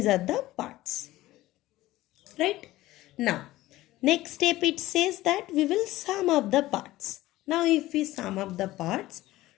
are the parts. Right? Now, next step it says that we will sum up the parts. Now if we sum up the parts,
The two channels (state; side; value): quieter; right; 16.8 dB